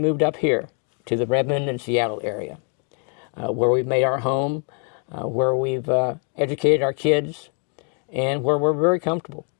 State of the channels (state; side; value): quieter; right; 39.7 dB